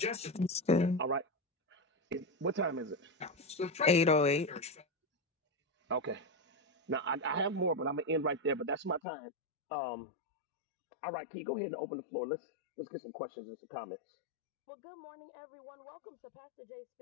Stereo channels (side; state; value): right; drops out; at 9.0 s